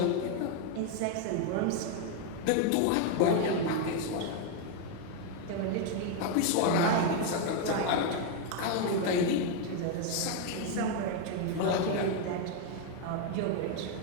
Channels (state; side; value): different; both; correlation 0.01